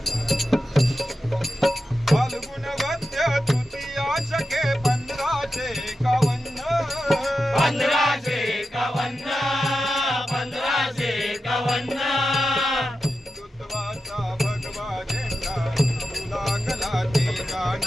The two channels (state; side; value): normal; both; correlation 0.91